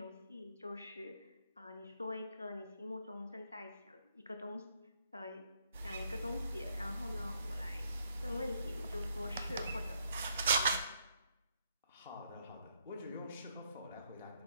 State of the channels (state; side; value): inverted; both; correlation -0.73